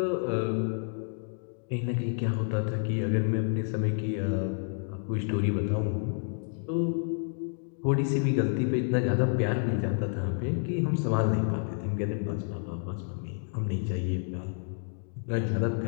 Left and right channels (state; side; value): silent; right; 58 dB below the other